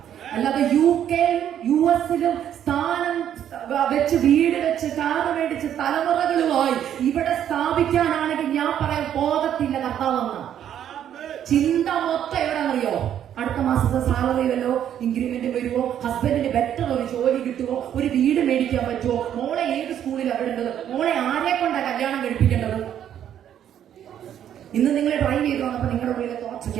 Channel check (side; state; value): left; quieter; 10.1 dB